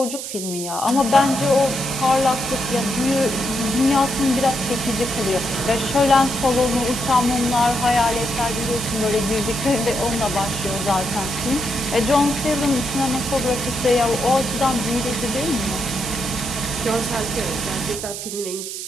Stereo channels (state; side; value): noise; right; hiss, 7 dB below the sound